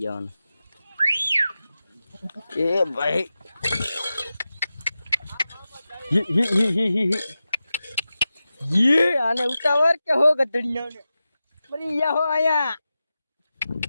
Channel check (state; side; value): inverted; both; correlation -0.93